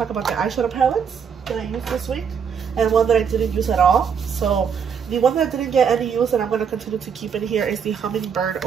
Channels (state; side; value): quieter; left; 7.0 dB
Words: about the eyeshadow palettes that I used this week and one that I didn't use at all. So the one that didn't get any use and I'm gonna continue to keep in here is the Hummingbird